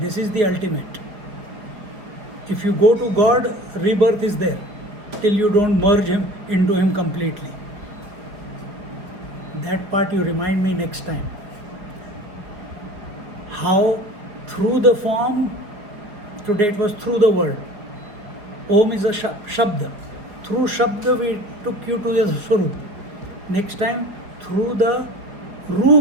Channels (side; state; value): left; late; 5.0 ms